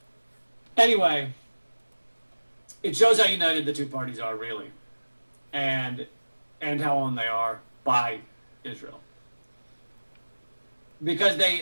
Anyway, it shows how united the two parties are, really, and how owned they are by Israel. Because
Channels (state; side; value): inverted; both; correlation -1.00